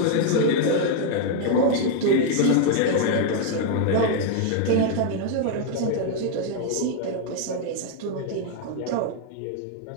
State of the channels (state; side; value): different; both; correlation 0.00